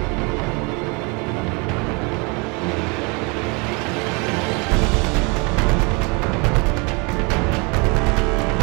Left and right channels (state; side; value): quieter; left; 30.2 dB